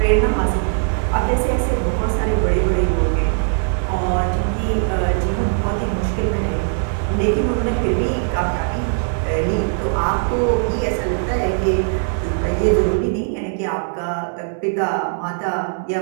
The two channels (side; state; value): left; silent; 66 dB below the other